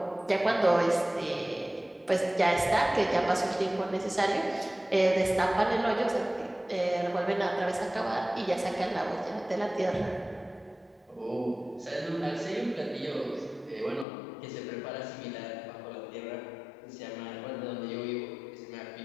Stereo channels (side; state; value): right; drops out; at 14.1 s